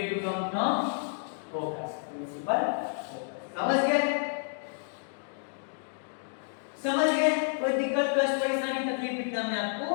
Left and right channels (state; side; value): silent; right; digital silence